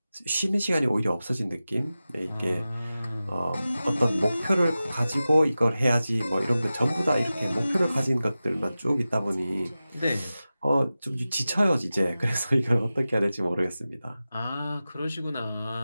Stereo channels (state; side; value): inverted; both; correlation -0.95